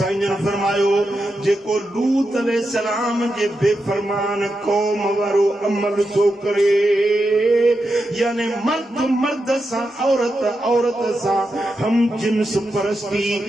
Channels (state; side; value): normal; both; correlation 0.87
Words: जन फरमायो जेको लूत अलैहिस्सलाम जे बेफरमान कौम वारो अमल थो करे यानी मर्द मर्द सां औरत औरत सां हम जिन्स परस्ती